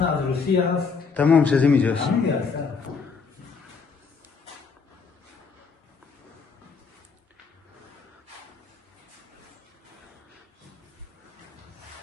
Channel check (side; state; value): right; quieter; 5.2 dB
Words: نه از روسیه هست تمام شده اینجاست. همین هست